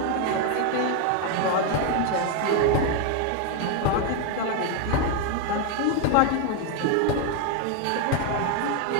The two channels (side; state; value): both; different; correlation 0.01